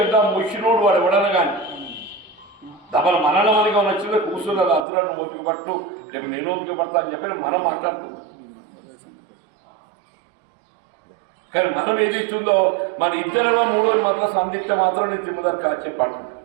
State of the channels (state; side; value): drops out; left; at 4.9 s